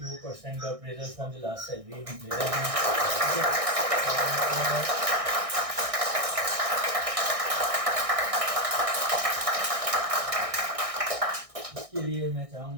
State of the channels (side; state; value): left; late; 1.6 ms